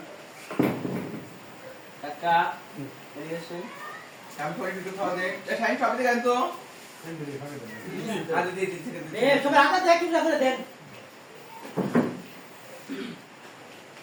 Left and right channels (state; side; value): identical; both; correlation 1.00